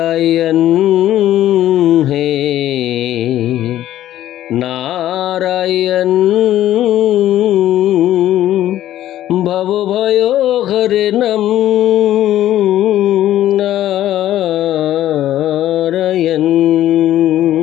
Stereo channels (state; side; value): quieter; right; 12.9 dB